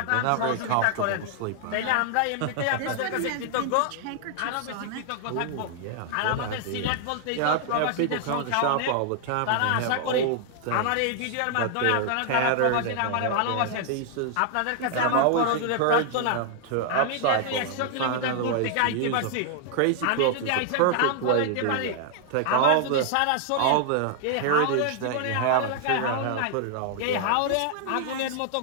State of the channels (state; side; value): different; both; correlation 0.00